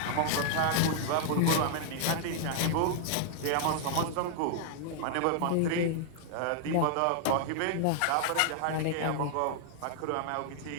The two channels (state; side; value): different; both; correlation -0.01